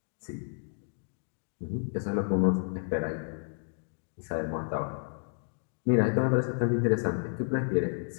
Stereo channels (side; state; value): right; silent; 57 dB below the other